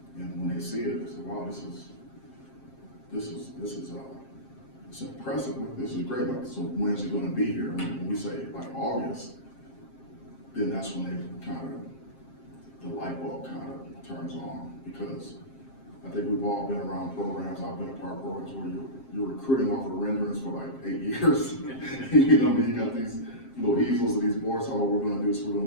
And when they see it, they say, wow, this is it's impressive, this is great, like, so when's it gonna be here? And when we say like August, then that's when they kind of, the light bulb kind of turns on, because I think we've all been around programs, I've been a part of programs where you're recruiting off of renderings for like 8 years. You know what I mean? You got these little easels and these boards, how we're gonna do this, we're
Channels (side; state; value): right; late; 7.5 ms